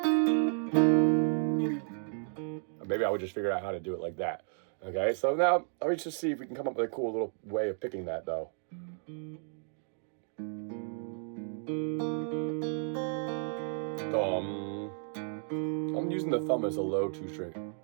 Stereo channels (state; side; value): silent; left; 56 dB below the other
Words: Maybe I would just figure out how to do it like that. Okay, so now let me just see if we can come up with a cool little way of picking that though. Thumb. I'm using the thumb as a low 2 string.